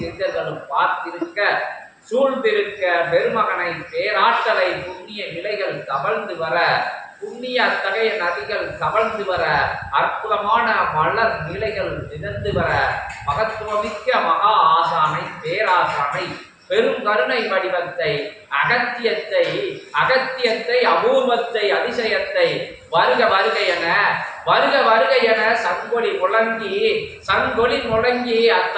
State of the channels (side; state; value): both; identical; correlation 1.00